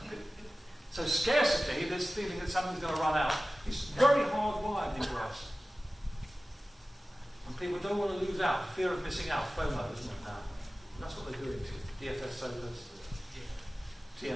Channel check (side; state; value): both; normal; correlation 0.96